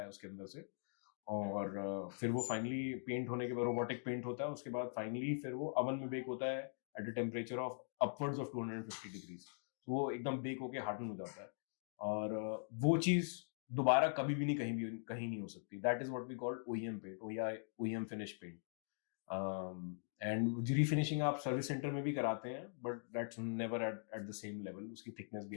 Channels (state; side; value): silent; right; digital silence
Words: है उसके अंदर से, और फिर वो फाइनली पेंट होने के बाद रोबोटिक पेंट होता है, उसके बाद फाइनली फिर वो अवन में बेक होता है at a temperature of upwards of 250 डिग्रीज. तो वो एकदम बेक होके हार्डन हो जाता है, और वो चीज दोबारा कभी भी कहीं नहीं हो सकती. That is what we called OEM paint या OEM finish paint. And refinishing आप सर्विस सेंटर में भी कराते हैं, but that's never at the same level. उसकी थिकनेस भी